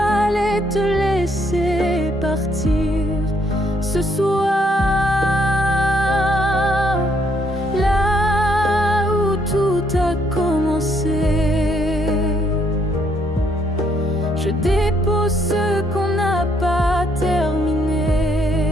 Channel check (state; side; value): normal; both; correlation 0.71